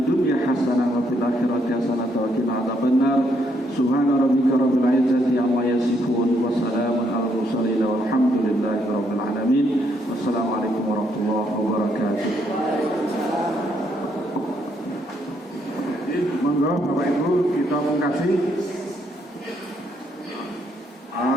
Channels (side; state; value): both; normal; correlation 0.74